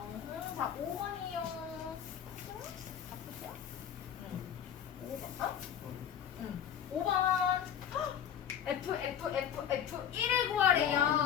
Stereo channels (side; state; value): right; quieter; 9.0 dB